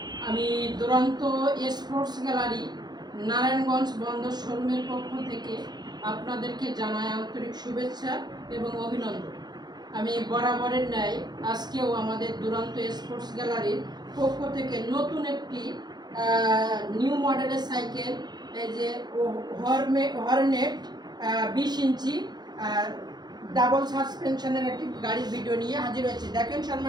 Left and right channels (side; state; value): left; late; 0.20 ms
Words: আমি দুরন্ত স্পোর্টস গ্যালারি নারায়ণগঞ্জ বন্দর শোরুমের পক্ষ থেকে আপনাদেরকে জানাই আন্তরিক শুভেচ্ছা এবং অভিনন্দন। আমি বরাবরের ন্যায় আজকেও আমাদের দুরন্ত স্পোর্টস গ্যালারির পক্ষ থেকে নতুন একটি নিউ মডেলের সাইকেল, এই যে হর্নেট 20 ইঞ্চি ডাবল সাসপেনশনের একটি গাড়ির ভিডিও নিয়ে হাজির হয়েছে। দেখেন